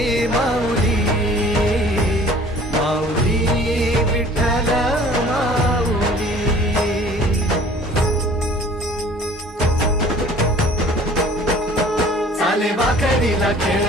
माऊली माऊली विठ्ठल माऊली. चाले वाकरीला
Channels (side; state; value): both; normal; correlation 0.50